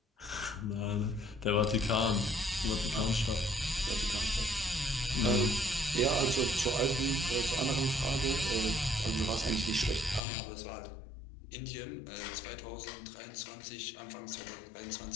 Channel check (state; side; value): drops out; right; at 10.2 s